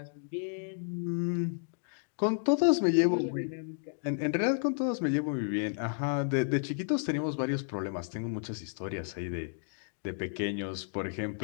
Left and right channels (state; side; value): silent; right; digital silence